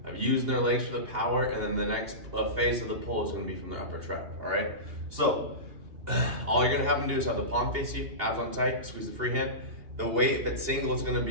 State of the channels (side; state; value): left; late; 2.8 ms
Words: of using their legs for the power, and then the next phase of the pull is gonna be from their upper trap, all right? So all you're gonna have them do is have the palm face you, abs on tight, squeeze the free hand. The weight, if it's single, is gonna